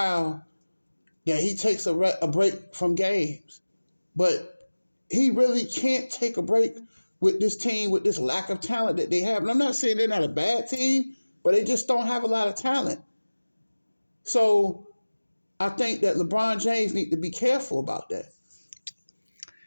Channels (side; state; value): both; inverted; correlation -1.00